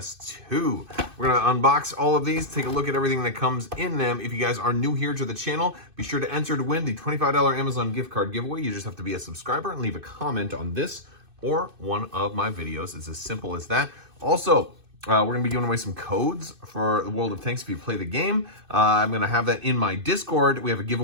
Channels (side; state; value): left; late; 2.6 ms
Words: We're gonna unbox all of these, take a look at everything that comes in them. If you guys are new here to the channel, be sure to enter to win the $25 Amazon gift card giveaway. You just have to be a subscriber and leave a comment on this or one of my videos. It's as simple as that. Also, we're gonna be giving away some codes for the World of Tanks if you play the game. I'm gonna have that in my Discord. We have a